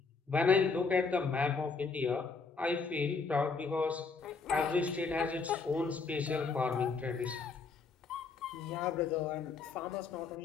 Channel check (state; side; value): quieter; right; 4.7 dB